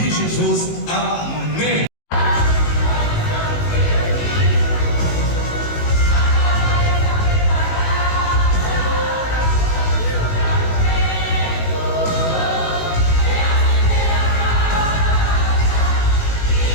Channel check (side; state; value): right; late; 18 ms